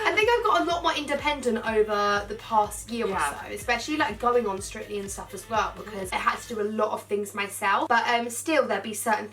think I've got a lot more independent over the past year or so, especially like going on Strictly and stuff as well, because I had to do a lot of things myself, but still there'd be certain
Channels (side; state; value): both; identical; correlation 1.00